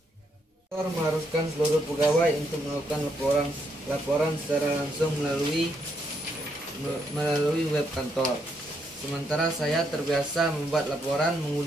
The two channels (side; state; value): both; normal; correlation 0.76